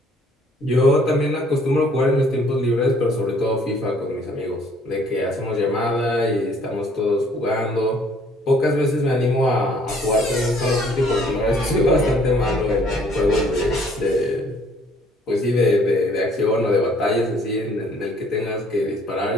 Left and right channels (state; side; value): normal; both; correlation 0.60